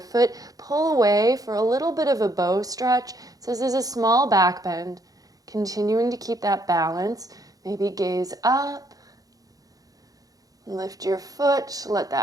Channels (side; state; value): left; late; 0.18 ms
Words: Pull away for a little bit of a bow stretch. So this is a small back bend. Continuing to keep that balance. Maybe gaze up. Lift your foot. Let